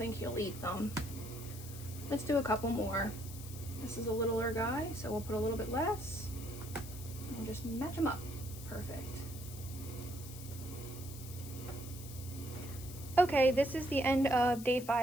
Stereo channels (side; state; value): left; noise; hiss, 14 dB below the sound